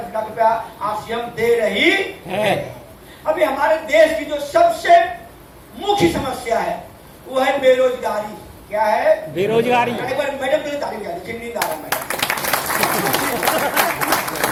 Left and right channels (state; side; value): identical; both; correlation 1.00